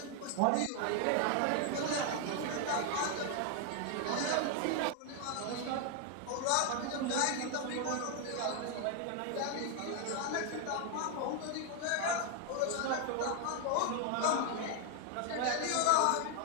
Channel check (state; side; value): different; both; correlation 0.00